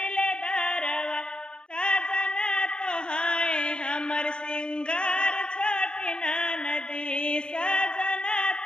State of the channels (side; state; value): right; late; 0.051 ms